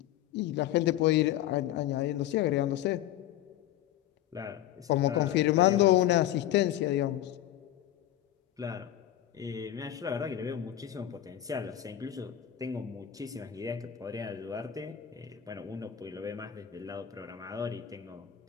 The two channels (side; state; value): right; quieter; 12.1 dB